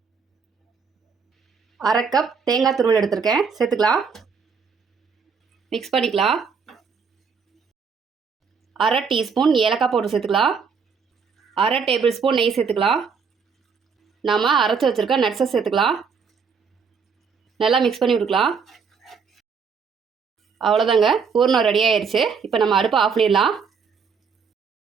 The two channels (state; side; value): quieter; left; 5.8 dB